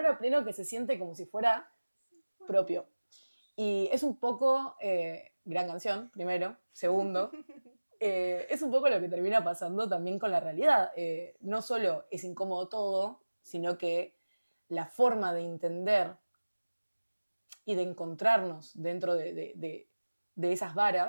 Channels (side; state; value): both; inverted; correlation -1.00